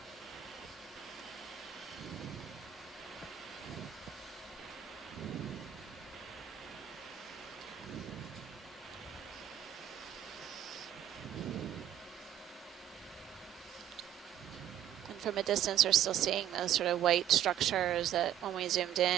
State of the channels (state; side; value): quieter; left; 10.8 dB